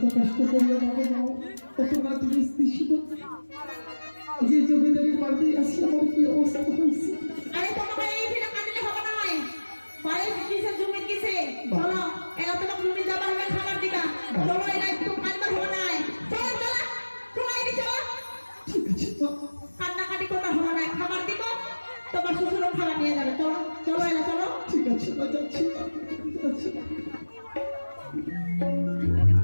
কষ্ট করিয়া বাবা মাও কত রাত ছিল যে জমিদারের বাড়িতে আসি আমার কি অবস্থা হয়েছে। আরে তোমাকে এই ফিরে কাঁদলে হবে না হয় বাড়ি কিসে জমি কিসে চলো এলা তোমাকে জমি যাবা হবে খাবার দিকা চলো এলা একটু কাঁদবার হবে না চলো চলো তোমার এই চলো ঠিক আছে তো কান্নাকাটি করতে হবে না খাবার দিব তোমার শ্বশুরও খাবার নিয়ে যাবে চলো চলো এলা চলো ঠিক আছে না যাচ্ছি যাচ্ছি।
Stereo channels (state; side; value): inverted; both; correlation -1.00